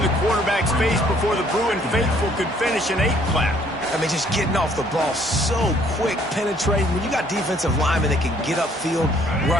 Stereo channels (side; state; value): both; normal; correlation 0.62